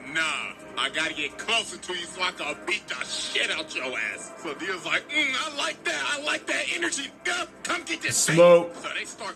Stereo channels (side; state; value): both; identical; correlation 1.00